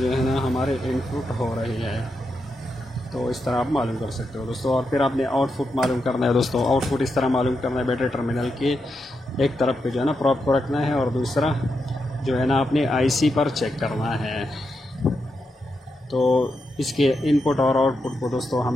है ना हमारे इनपुट हो रही है। तो इस तरह आप मालूम कर सकते हो दोस्तों। और फिर आपने आउटपुट मालूम करना है दोस्तों। आउटपुट इस तरह मालूम करना है, बैटरी टर्मिनल के एक तरफ पे जो है ना प्रोब को रखना है और दूसरा जो है ना अपने IC पर चेक करना है। तो इसके इनपुट और आउटपुट को दोस्तों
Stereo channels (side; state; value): both; normal; correlation 0.85